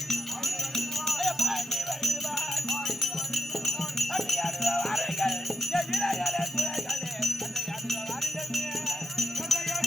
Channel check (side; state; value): both; normal; correlation 0.86